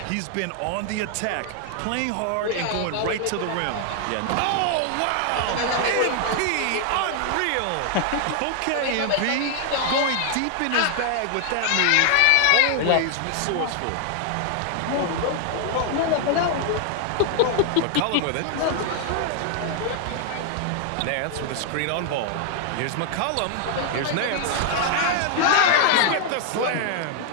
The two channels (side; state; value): both; different; correlation 0.00